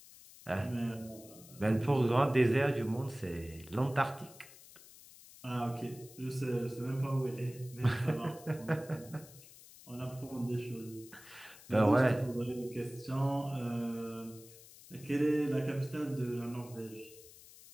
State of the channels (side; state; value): left; noise; hiss, 20 dB below the sound